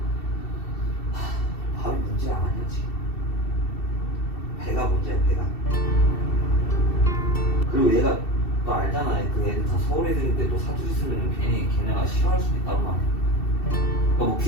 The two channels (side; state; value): right; late; 2.7 ms